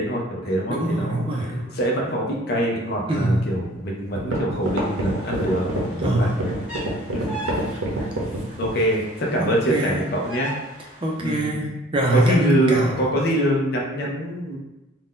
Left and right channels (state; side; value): normal; both; correlation 0.51